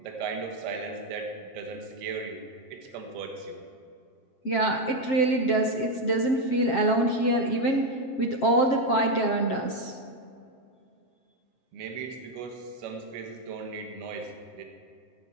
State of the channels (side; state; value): right; late; 7.5 ms